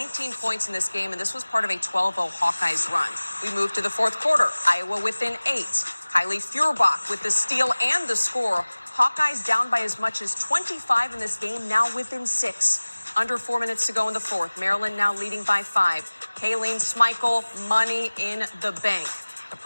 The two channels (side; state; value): both; inverted; correlation -1.00